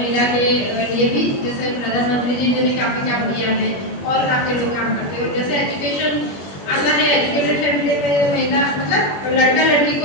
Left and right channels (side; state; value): right; late; 21 ms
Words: के लिए भी, जैसे प्रधानमंत्री जी ने भी काफ़ी काम किया है और काफ़ी लोग काम करते हैं। जैसे एजुकेशन आता है, एजुकेटेड फैमिली में महिला मतलब लड़का लड़की को